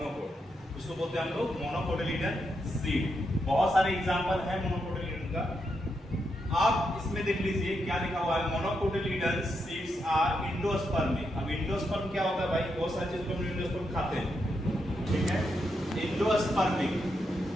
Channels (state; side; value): normal; both; correlation 0.82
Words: उसको बोलते हैं हम लोग मोनोकोटिलिडन सीड। बहुत सारे एग्जांपल है मोनोकोटिलिडन का, आप इसमें देख लीजिए क्या लिखा हुआ है, मोनोकोटिलिडन सीड्स आर एंडोस्पर्मिक। अब एंडोस्पर्म क्या होता है भाई, बहुत सारी चीजों को हम एंडोस्पर्म खाते हैं, ठीक है। एंडोस्पर्मिक,